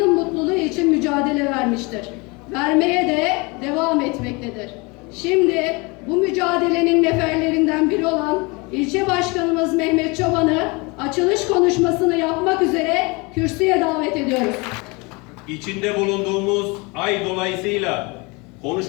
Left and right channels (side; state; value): right; quieter; 27.4 dB